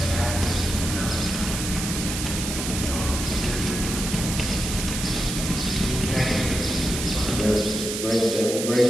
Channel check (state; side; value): noise; right; hiss, 4 dB below the sound